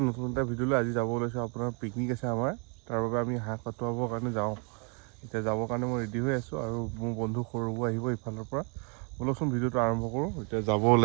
নতুন এটা ভিডিঅ'লৈ আজি যাব ওলাইছোঁ আপোনাৰ পিকনিক আছে আমাৰ তাৰ বাবে আমি হাঁহ কটোৱাবৰ কাৰণে যাওঁ এতিয়া যাবৰ কাৰণে মই ৰেডি হৈ আছোঁ আৰু মোৰ বন্ধু সৰুবোৰ আহিব ইফালৰ পৰা বলকচোন ভিডিঅ'টো আৰম্ভ কৰোঁ এতিয়া যাব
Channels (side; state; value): left; quieter; 36.2 dB